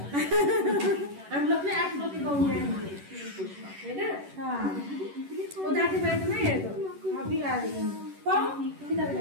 हम लोग ने आप लोग के गाँव में आएंगे, है ना? हाँ, वो जाके बैठना है तो अभी आ रही है। कौन किधर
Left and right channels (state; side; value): late; left; 11 ms